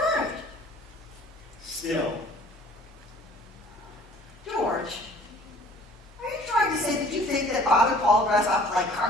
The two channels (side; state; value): both; normal; correlation 0.52